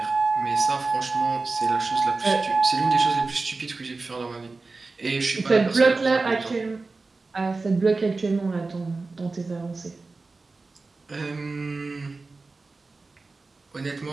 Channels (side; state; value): left; quieter; 3.7 dB